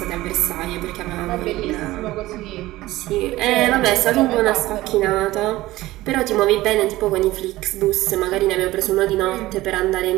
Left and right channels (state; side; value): quieter; left; 17.4 dB